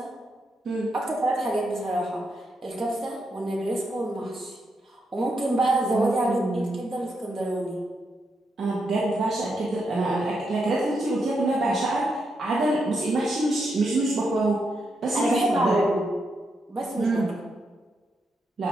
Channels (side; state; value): both; normal; correlation 0.82